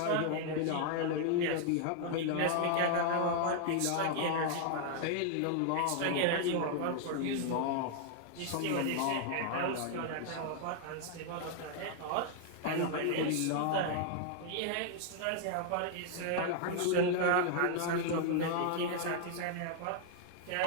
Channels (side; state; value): both; different; correlation 0.00